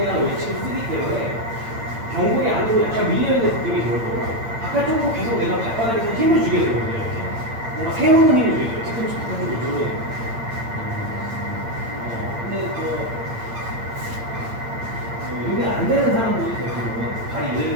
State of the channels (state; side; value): late; left; 8.8 ms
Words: 외측을 쓰기 때문에 경골이 안으로 약간 밀려있는 느낌이 좋을 거고 바깥쪽으로 계속 내가 발바닥에서 힘을 주게 되거든요. 이렇게. 뭔가 세우는 힘을 주게 돼요. 뒤꿈치 바깥쪽으로 누르는. 근데 이게 안 되는 사람들이 대부분 발이